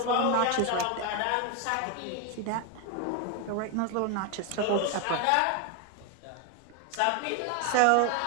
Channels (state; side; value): different; both; correlation 0.01